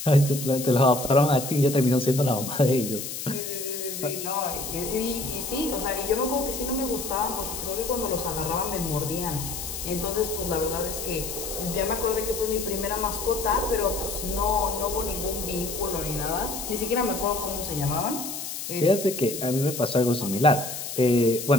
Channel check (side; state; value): left; noise; hiss, 7 dB below the sound